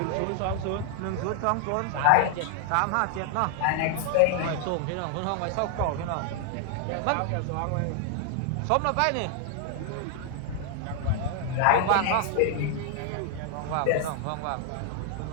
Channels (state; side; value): different; both; correlation 0.00